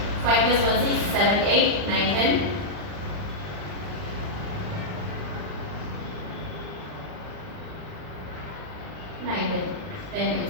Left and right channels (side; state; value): left; late; 39 ms